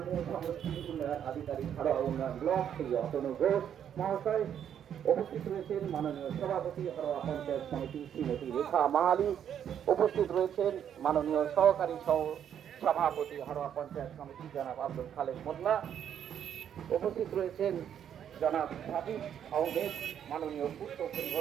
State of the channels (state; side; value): quieter; left; 9.2 dB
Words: সংস্কৃতি উন্নয়ন আধিকারিক হাড়োয়া উন্নয়ন ব্লক শ্রী অতনু ঘোষ মহাশয়, উপস্থিত রয়েছেন মাননীয় সভাপতি হাড়োয়া পঞ্চায়েত সমিতি শ্রীমতী রেখা মাহালি, উপস্থিত রয়েছেন মাননীয় সহকারী সভাপতি হাড়োয়া পঞ্চায়েত সমিতি জনাব আব্দুল খালেক মোল্লা, উপস্থিত রয়েছেন জনাব হাবিব আহমেদ, মাননীয় পূর্ত